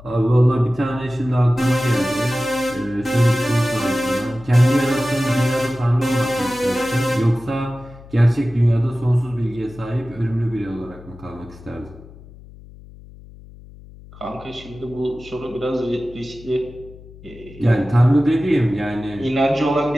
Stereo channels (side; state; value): left; noise; hum, 20 dB below the sound